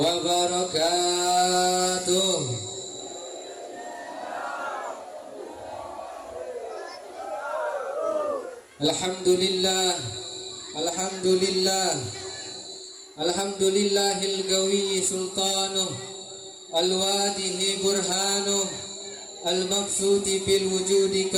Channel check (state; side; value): identical; both; correlation 1.00